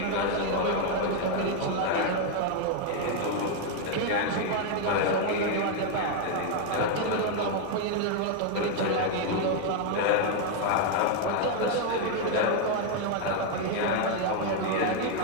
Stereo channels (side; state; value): both; different; correlation 0.01